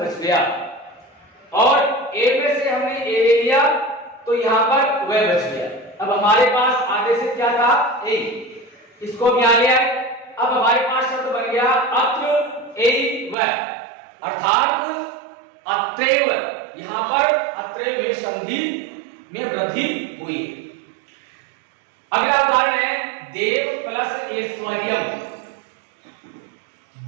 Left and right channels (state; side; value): drops out; left; at 13.4 s